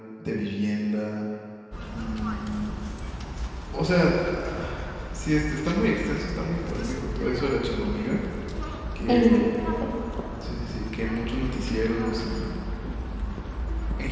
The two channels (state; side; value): identical; both; correlation 1.00